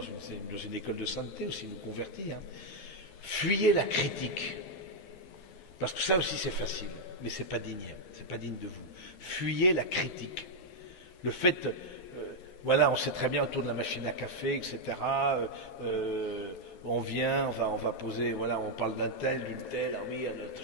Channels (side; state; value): right; late; 11 ms